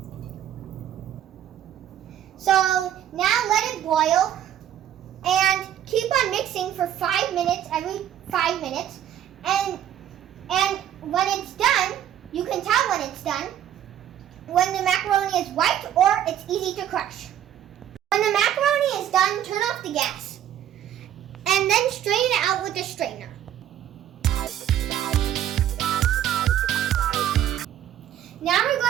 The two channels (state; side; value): quieter; left; 10.8 dB